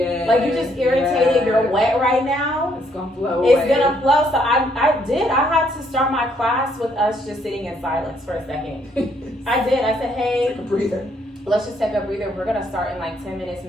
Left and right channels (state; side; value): normal; both; correlation 0.70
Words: Like, you just irritated. You're wet right now. It's gonna flow. It's gonna flow. So I had to start my class with us just sitting in silence for a second. I did. I said, hey, take a breather. Let's just take a breather. We're gonna start in like 10 minutes.